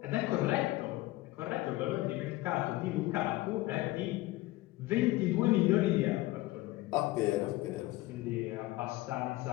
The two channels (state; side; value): quieter; right; 18.4 dB